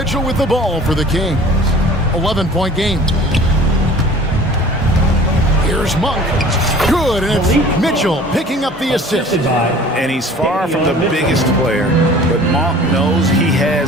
with the ball for the Kings. 11-point game. Here's Monk. Good, and it's Mitchell picking up the assist. And he's far from the biggest player, but Monk knows he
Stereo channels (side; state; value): both; normal; correlation 0.47